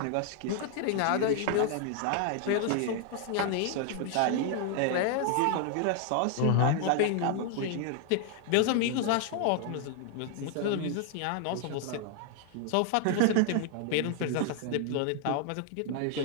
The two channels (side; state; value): both; different; correlation 0.00